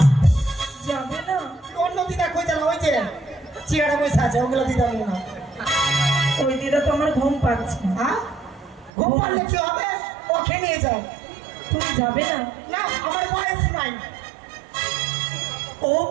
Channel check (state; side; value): drops out; left; at 8.9 s